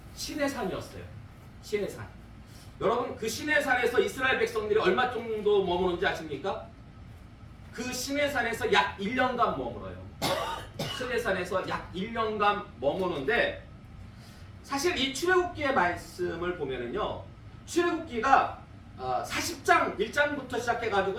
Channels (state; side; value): identical; both; correlation 1.00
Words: 시내산이었어요. 시내산. 여러분, 그 시내산에서 이스라엘 백성들이 얼마 정도 머무는지 아십니까? 그 시내산에서 약 1년간 머물어요. 시내산에서 약 1년간 머무는데, 사실 이 출애굽기의 말씀을 보면은요, 출애굽기가 40장 1장부터 시작해가지고